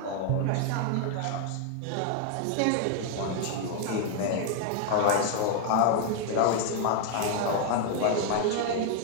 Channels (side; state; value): both; different; correlation 0.00